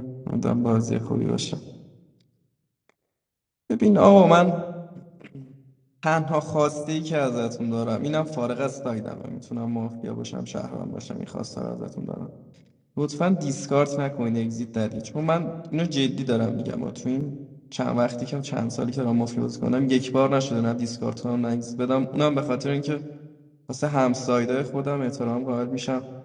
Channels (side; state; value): both; identical; correlation 1.00